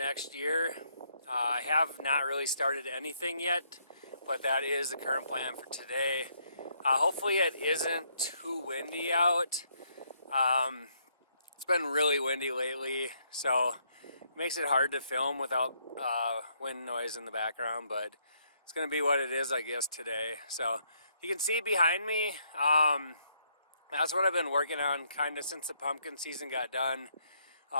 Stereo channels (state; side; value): inverted; both; correlation -0.72